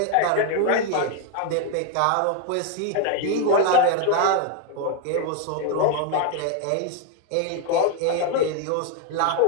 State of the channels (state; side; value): different; both; correlation 0.01